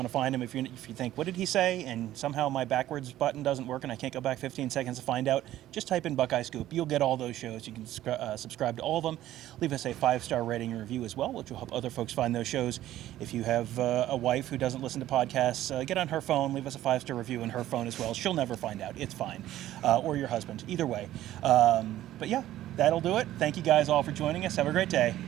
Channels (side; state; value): left; quieter; 13.7 dB